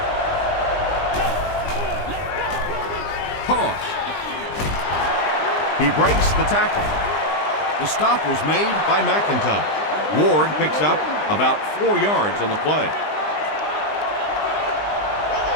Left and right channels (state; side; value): late; right; 20 ms